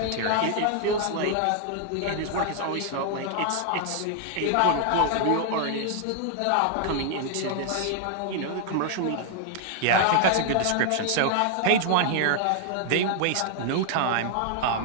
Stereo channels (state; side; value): different; both; correlation 0.00